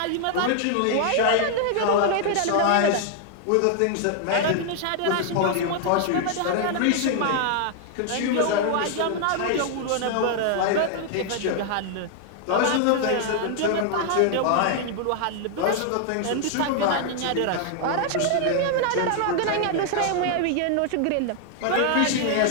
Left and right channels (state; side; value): different; both; correlation 0.00